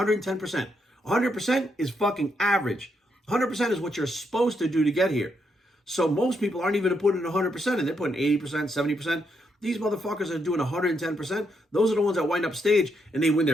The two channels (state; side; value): normal; both; correlation 0.78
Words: 100% is fucking average. 100% is what you're supposed to do to get here. So most people aren't even putting 100% in. They're putting 80%, 70%. These motherfuckers are doing 110%. Those are the ones that wind up stage and they win